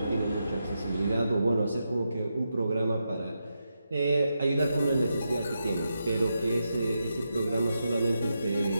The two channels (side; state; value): both; inverted; correlation -0.86